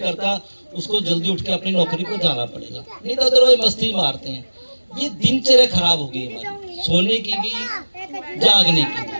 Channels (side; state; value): both; inverted; correlation -1.00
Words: उसको जल्दी उठ के अपनी नौकरी को जाना पड़ेगा, नहीं तो अदरवाइज मस्ती मारते हैं। ये दिनचर्या खराब हो गई हमारी, सोने की भी, जागने की भी।